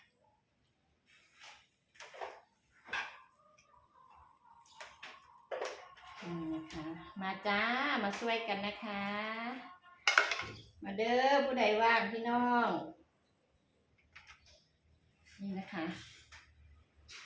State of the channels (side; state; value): both; identical; correlation 1.00